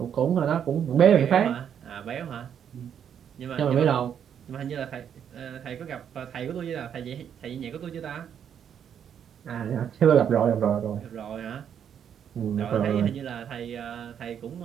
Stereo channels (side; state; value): left; quieter; 8.6 dB